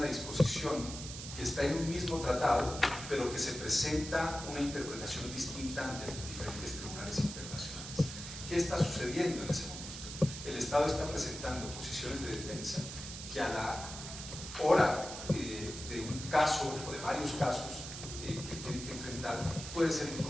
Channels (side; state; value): right; noise; hiss, 9 dB below the sound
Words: disposición que está en un mismo tratado, pero que se presenta una interpretación distinta ante diferentes tribunales internacionales. ¿Qué está sucediendo en ese momento? El Estado está presentando posiciones de defensa que a la hora de un caso o de varios casos que tiene que enfrentar puede ser